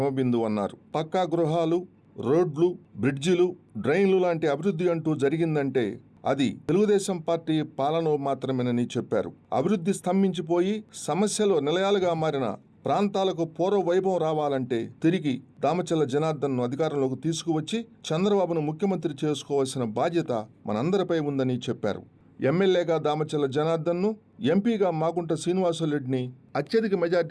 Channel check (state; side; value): identical; both; correlation 1.00